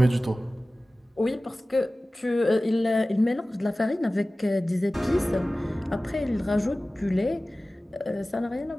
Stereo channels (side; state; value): both; normal; correlation 0.97